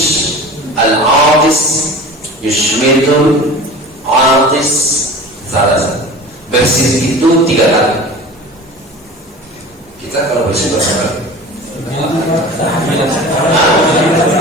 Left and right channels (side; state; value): both; normal; correlation 0.37